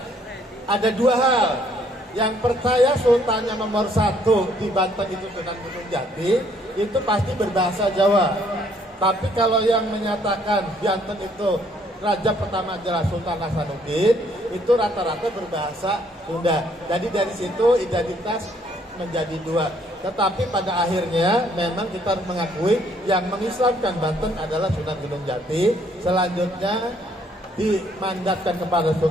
ada dua hal. Yang percaya sultannya nomor 1 di Banten itu Sunan Gunung Jati, itu pasti berbahasa Jawa. Tapi kalau yang menyatakan Banten itu raja pertama adalah Sultan Hasanuddin, itu rata-rata berbahasa Sunda. Jadi dari situ identitas menjadi dua. Tetapi pada akhirnya memang kita harus mengakui yang mengislamkan Banten adalah Sunan Gunung Jati. Selanjutnya dimandatkan kepada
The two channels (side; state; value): both; normal; correlation 0.65